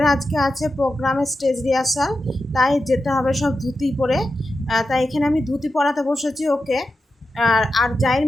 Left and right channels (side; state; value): both; normal; correlation 0.90